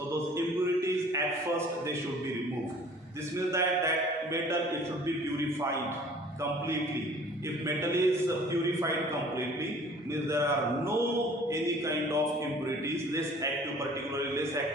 those impurities at first they should be removed. This means that that metal it should be purified completely. If metal is purified completely, means there are no any kind of impurities, less active, particularly less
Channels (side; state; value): both; normal; correlation 0.51